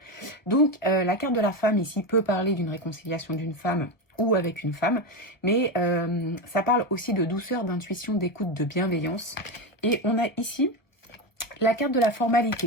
Donc, la carte de la femme ici peut parler d'une réconciliation d'une femme ou avec une femme, mais ça parle aussi de douceur, d'intuition, d'écoute, de bienveillance. Et on a ici la carte de la formalité.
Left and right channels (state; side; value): late; right; 1.1 ms